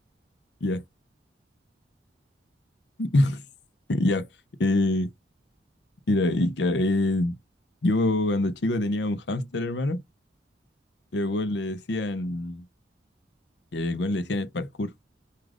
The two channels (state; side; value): normal; both; correlation 0.65